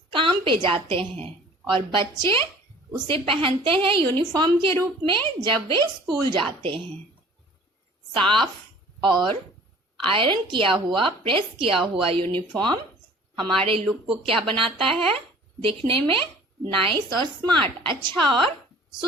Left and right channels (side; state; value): both; normal; correlation 0.48